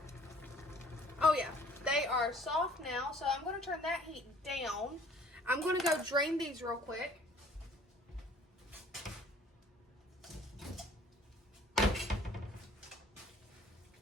Oh yeah, they are soft now, so I'm gonna turn that heat down. I'm gonna go drain these real quick.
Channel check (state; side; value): normal; both; correlation 0.54